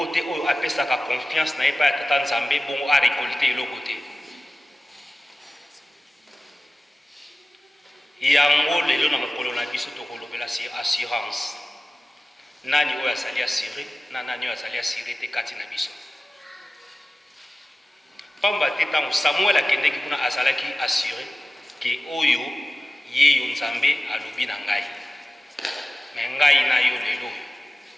te oyo apesaka confiance na ye pa ya tata Nzambe bongo a récolté eloko te. Yango lelo na mokolo na biso tokolobela assurance. Nani oyo azali assuré na nani oyo azali assuré te kati na biso. Pamba te ntango Samuel akendeki kuna azalaki assuré ke oyo ye yo Nzambe alobi na ngai. Me ngai na yo lelo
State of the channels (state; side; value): normal; both; correlation 0.96